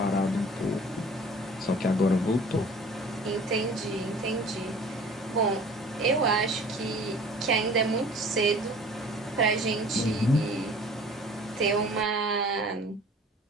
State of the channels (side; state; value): both; normal; correlation 0.47